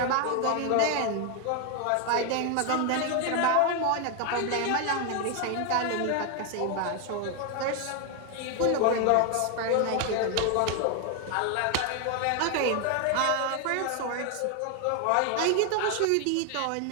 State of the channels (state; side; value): different; both; correlation 0.01